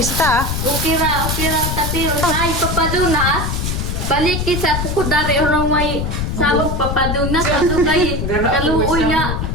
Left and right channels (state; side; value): noise; left; rumble, 2 dB below the sound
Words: Ukira tatiri. Ay, papadunas. Balik sa pukudari orang may sabog papadunas. Ato kay kaluoy na.